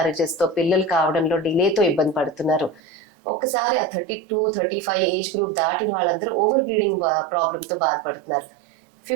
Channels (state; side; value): drops out; left; at 2.8 s